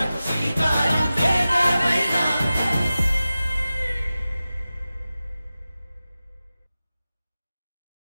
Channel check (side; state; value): both; inverted; correlation -0.95